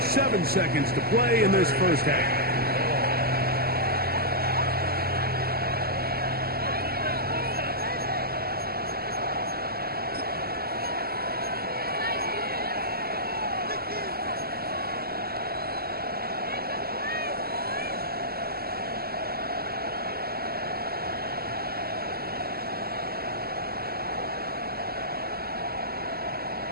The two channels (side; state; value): left; late; 0.45 ms